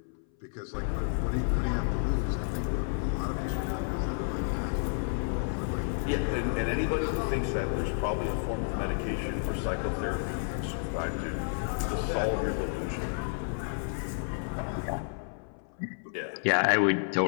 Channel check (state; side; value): silent; right; 57 dB below the other